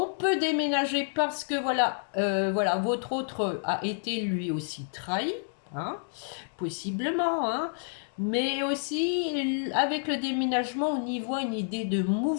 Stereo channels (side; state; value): right; silent; digital silence